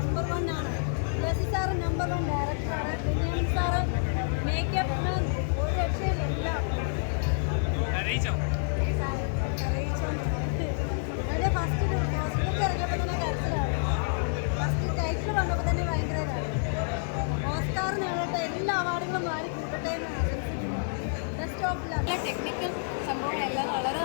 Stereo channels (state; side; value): silent; right; digital silence